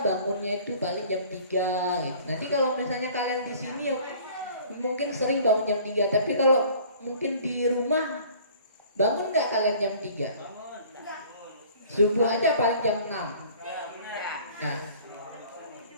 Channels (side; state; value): both; inverted; correlation -0.50